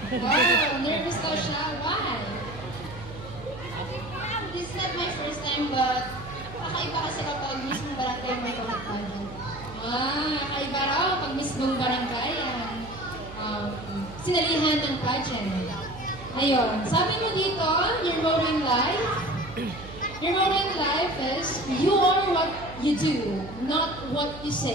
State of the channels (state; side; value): noise; right; hum, 14 dB below the sound